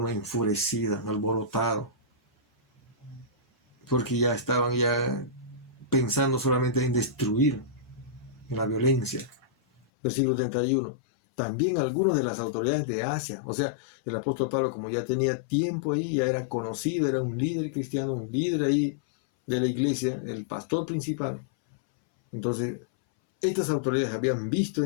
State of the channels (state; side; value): drops out; right; at 9.8 s